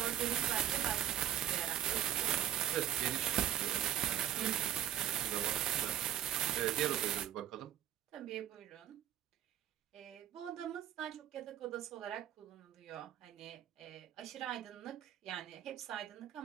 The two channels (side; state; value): left; quieter; 11.3 dB